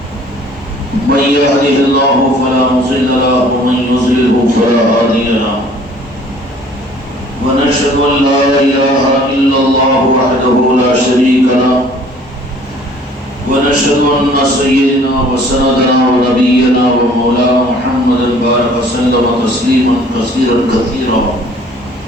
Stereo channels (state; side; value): normal; both; correlation 0.54